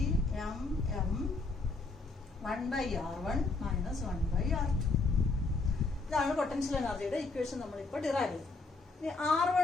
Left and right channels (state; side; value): quieter; right; 3.7 dB